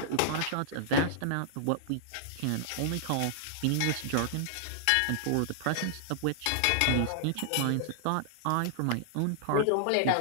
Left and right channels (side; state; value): both; different; correlation -0.01